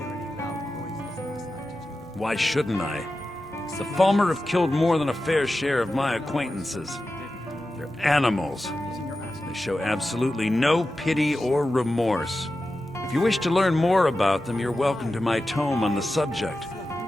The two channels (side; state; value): both; normal; correlation 0.92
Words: any loud noises last night, did you? Why shouldn't I? The Falmer have killed more than a fair share of my acquaintances. They're animals. They show absolutely no pity or remorse. If you wish to learn more about them, you're welcome to my tome on the subject.